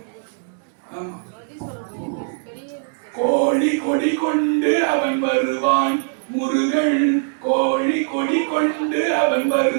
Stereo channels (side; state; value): left; silent; digital silence